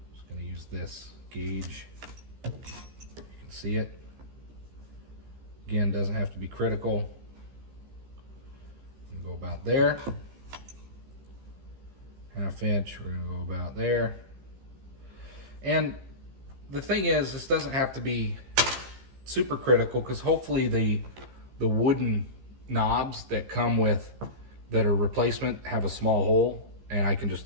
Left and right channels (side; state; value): left; late; 15 ms